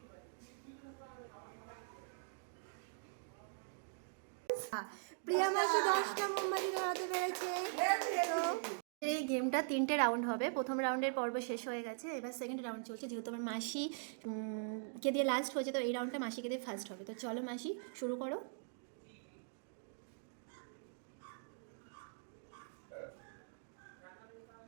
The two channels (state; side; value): silent; left; digital silence